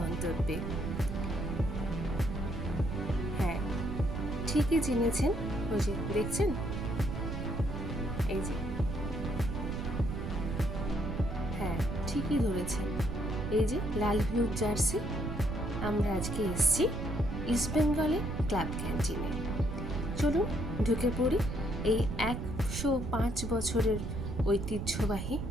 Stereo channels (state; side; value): noise; right; rumble, 5 dB below the sound